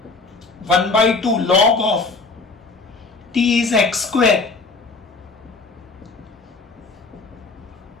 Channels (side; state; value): right; quieter; 3.9 dB